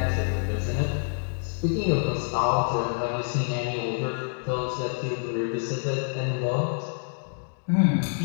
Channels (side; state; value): right; silent; 58 dB below the other